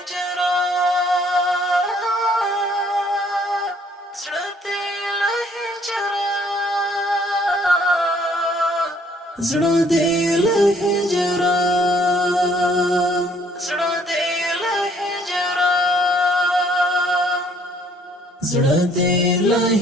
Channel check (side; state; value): both; normal; correlation 0.63